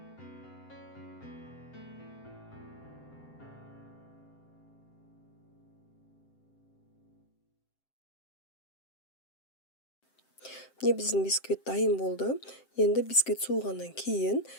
Міне биздин бисквит дайым болду. Енді бисквит суугандан кийин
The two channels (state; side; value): late; right; 7.7 ms